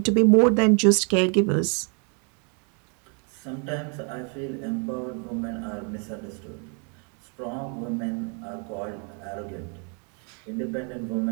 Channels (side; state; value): left; quieter; 37.6 dB